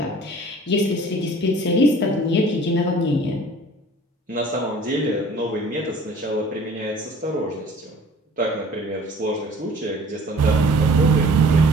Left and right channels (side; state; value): both; normal; correlation 0.49